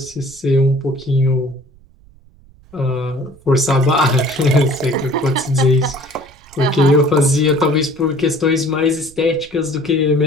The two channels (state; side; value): noise; right; rumble, 26 dB below the sound